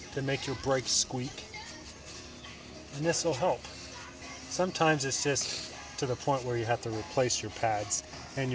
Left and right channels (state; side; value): identical; both; correlation 1.00